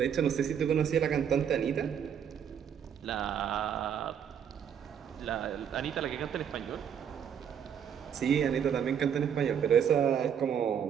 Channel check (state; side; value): quieter; left; 8.2 dB